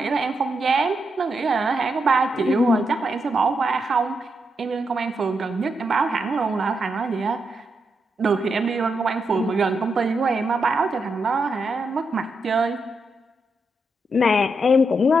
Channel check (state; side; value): normal; both; correlation 0.83